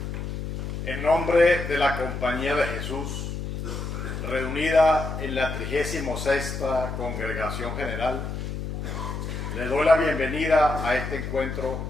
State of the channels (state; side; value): noise; left; hum, 5 dB below the sound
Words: en nombre de la Compañía de Jesús, reunida en la 36ª Congregación General, le doy la bienvenida a este encuentro